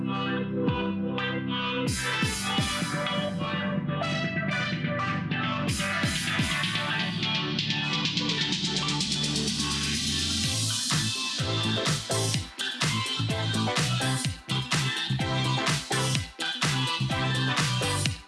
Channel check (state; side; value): identical; both; correlation 1.00